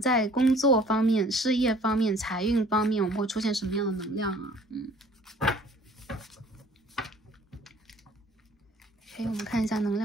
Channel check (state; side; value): normal; both; correlation 0.53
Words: 工作方面、事业方面、财运方面，我们会出现什么样的能量啊？OK， 我们看一下能